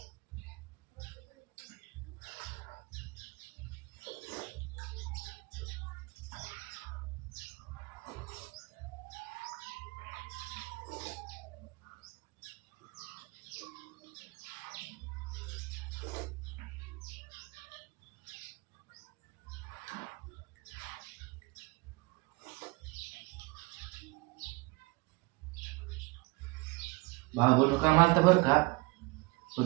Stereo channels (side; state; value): left; quieter; 25.5 dB